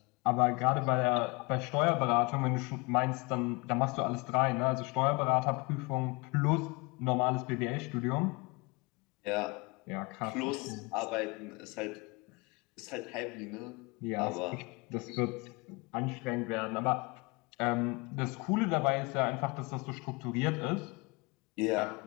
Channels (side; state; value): right; quieter; 27.5 dB